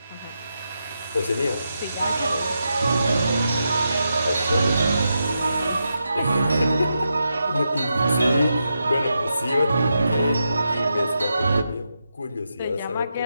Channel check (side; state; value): both; inverted; correlation -0.85